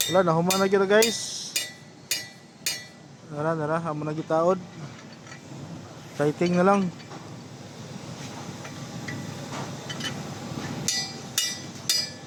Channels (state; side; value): identical; both; correlation 1.00